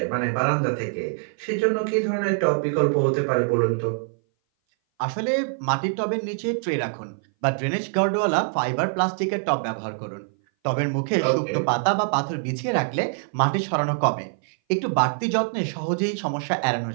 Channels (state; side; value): silent; left; 58 dB below the other